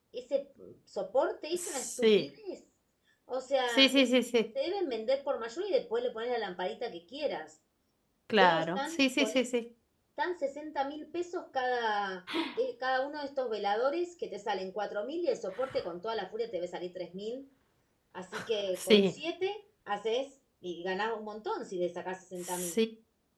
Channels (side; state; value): both; identical; correlation 1.00